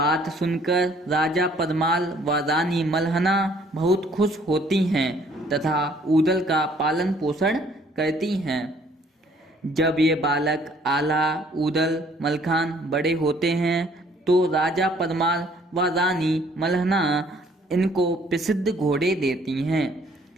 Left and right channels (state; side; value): normal; both; correlation 0.60